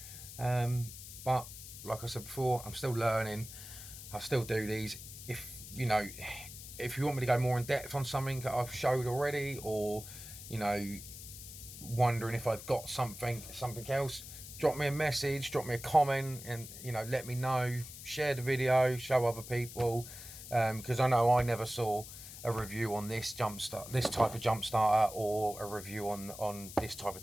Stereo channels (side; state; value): left; noise; hiss, 13 dB below the sound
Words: but like I said before, I'm still learning. I still do these. If you want me to go more in depth on something that I've showed already, or you know, wondering if I've got something else, drop me a message, drop me a comment, and you know, let me know. Share the video, show other people, because I know I never saw a review on this this type of jump starter, or a review on this type